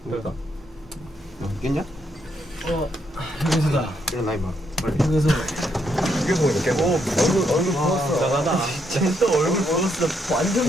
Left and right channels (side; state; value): both; normal; correlation 0.76